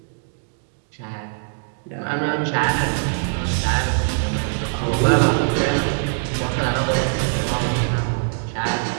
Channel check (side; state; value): left; silent; digital silence